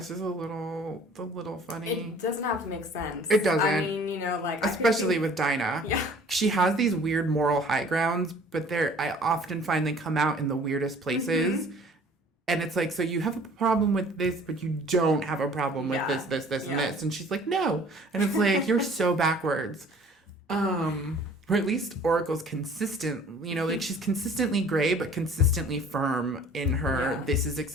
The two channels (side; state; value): both; normal; correlation 0.51